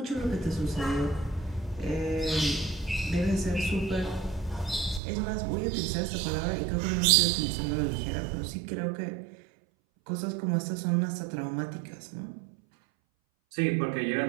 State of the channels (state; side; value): drops out; left; at 5.0 s